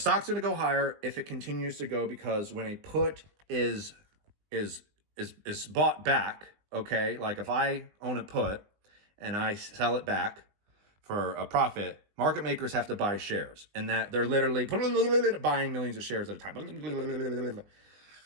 going to go higher if it continues to go, because when a put is bought back, okay, like if I own a put and I sell it back for a profit, market makers have to buy shares, and that they're literally buying millions of shares at a time. When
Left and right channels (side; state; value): left; late; 20 ms